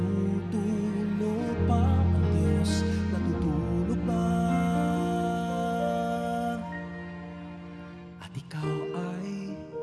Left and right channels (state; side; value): identical; both; correlation 1.00